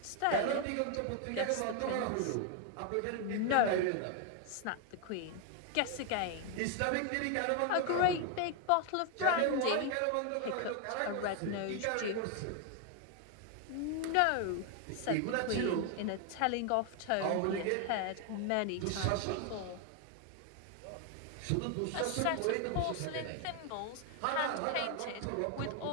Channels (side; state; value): both; different; correlation 0.00